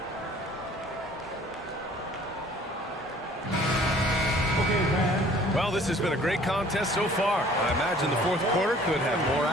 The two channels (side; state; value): both; normal; correlation 0.53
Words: Well, this has been a great contest so far. I imagine the fourth quarter could have more